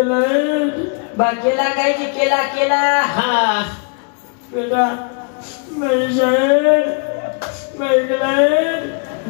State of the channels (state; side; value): quieter; right; 38.2 dB